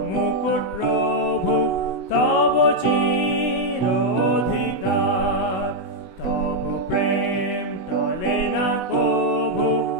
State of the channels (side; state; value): right; late; 16 ms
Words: মুকুট প্রভু তব চির অধিকার। তব প্রেম টলে না কভু,